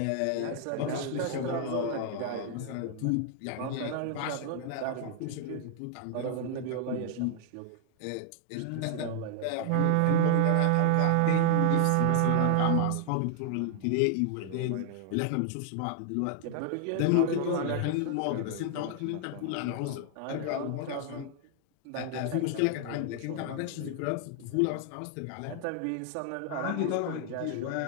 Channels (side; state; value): both; different; correlation 0.00